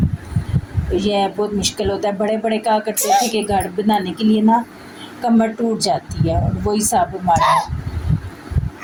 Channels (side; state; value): both; identical; correlation 1.00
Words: तो यह बहुत मुश्किल होता है। बड़े बड़े कहा करते थे कि घर बनाने के लिए ना कमर टूट जाती है, और वही सब हमारा है।